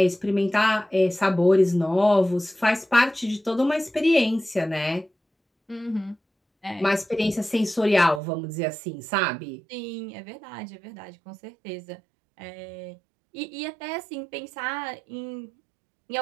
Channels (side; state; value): left; drops out; at 8.2 s